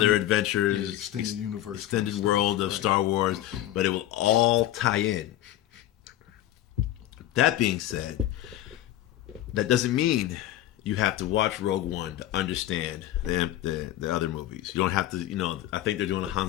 adventures, extended universe, extended world of Star Wars, but it will all tie in. That being said, that doesn't mean you have to watch Rogue One to understand the other movies. You don't have to, I think they're doing a Han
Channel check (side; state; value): right; quieter; 13.5 dB